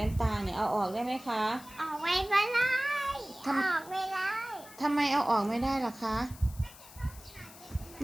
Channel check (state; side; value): noise; left; hiss, 19 dB below the sound